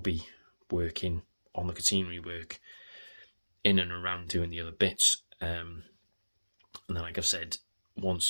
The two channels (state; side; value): inverted; both; correlation -1.00